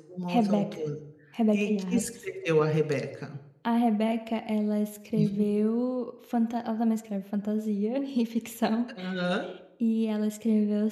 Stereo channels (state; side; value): identical; both; correlation 1.00